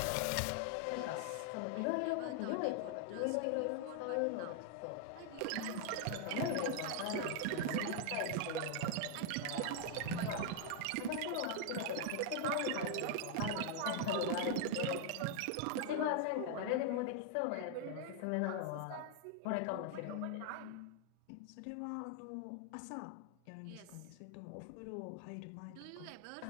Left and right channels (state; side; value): different; both; correlation 0.00